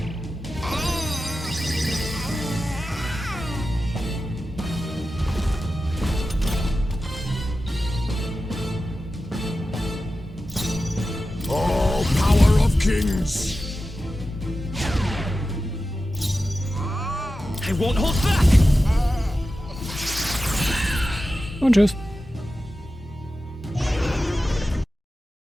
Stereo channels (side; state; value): both; normal; correlation 0.93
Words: Vikings! I won't hold back! Und tschüss.